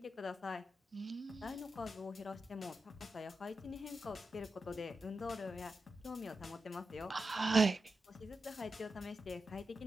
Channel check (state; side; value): normal; both; correlation 0.89